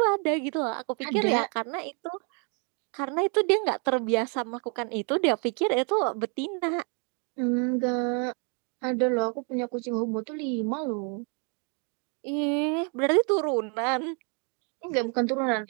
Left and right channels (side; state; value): left; quieter; 38.1 dB